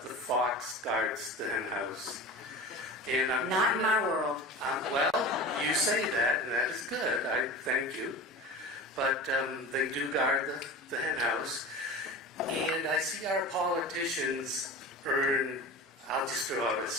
the fox guards the hen house. And Not in my world. Well, you say that, and that is good. I thank you. But they do guard the hen house. And I see our politicians earn, I'll just throw out a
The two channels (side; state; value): both; normal; correlation 0.32